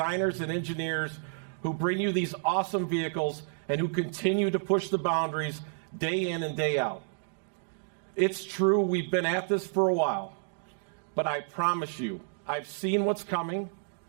and engineers who bring you these awesome vehicles and who continue to push the boundaries day in and day out. It's true, we've been at this for a while, but I promise you, I've seen what's coming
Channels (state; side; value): silent; left; digital silence